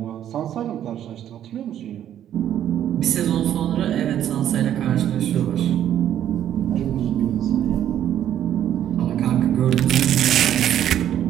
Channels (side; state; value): left; quieter; 10.8 dB